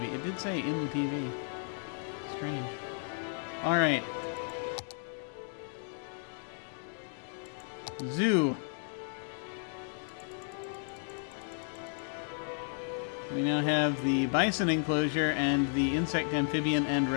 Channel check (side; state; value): right; silent; 55 dB below the other